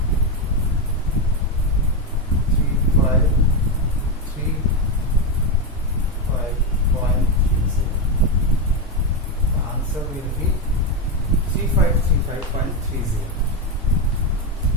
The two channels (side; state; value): both; normal; correlation 0.10